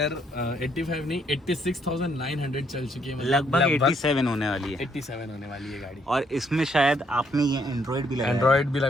85 नहीं 86,900 चल चुकी है। लगभग 87 होने वाली है। 87 होने वाली है गाड़ी। और इसमें शायद आपने ये एंड्रॉयड भी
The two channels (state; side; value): normal; both; correlation 0.70